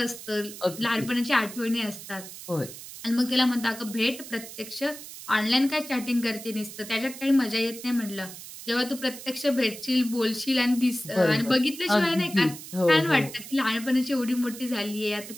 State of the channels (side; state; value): right; noise; hiss, 13 dB below the sound